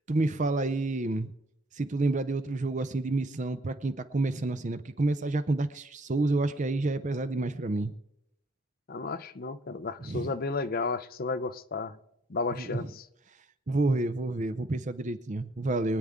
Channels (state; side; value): normal; both; correlation 0.64